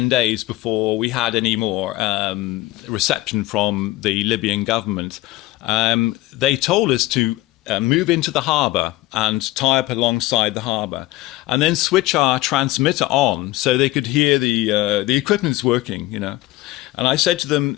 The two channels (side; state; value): right; quieter; 17.9 dB